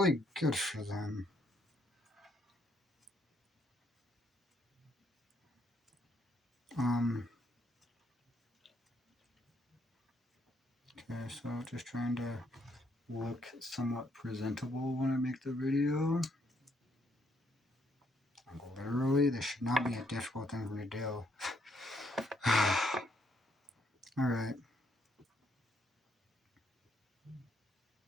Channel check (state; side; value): normal; both; correlation 0.72